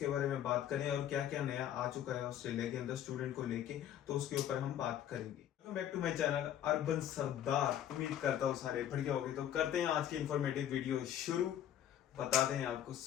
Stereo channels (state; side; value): quieter; right; 10.8 dB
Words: बारे में बात करें और क्या क्या नया आ चुका है ऑस्ट्रेलिया के अंदर स्टूडेंट को लेके, तो उसके ऊपर हम बात करेंगे। Welcome back to my channel urban Sardar. उम्मीद करता हूँ सारे बढ़िया होंगे। तो करते हैं आज की इंफॉर्मेटिव वीडियो शुरू, बताते हैं आपको